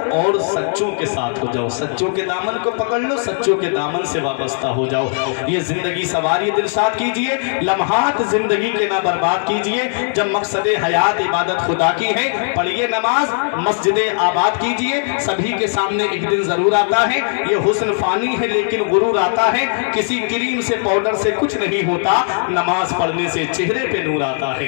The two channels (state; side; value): silent; right; 67 dB below the other